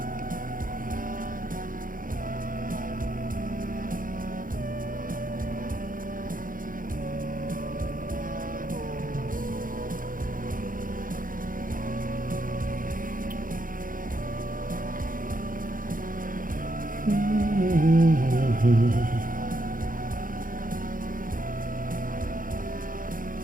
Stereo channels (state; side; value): late; left; 0.40 ms